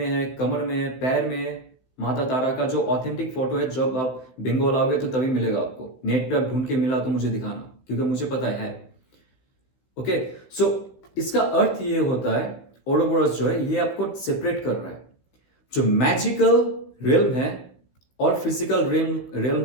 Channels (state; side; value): late; right; 16 ms